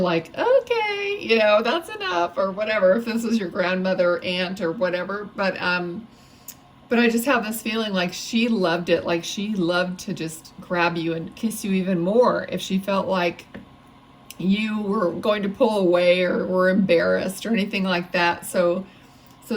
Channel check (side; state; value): both; identical; correlation 1.00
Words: okay, you know, that's enough or whatever, if this was your grandmother, aunt or whatever. But I just have this feeling like she loved it. Like she loved to just grab you and kiss you even more if she felt like you were going to pull away or were embarrassed or anything like that. So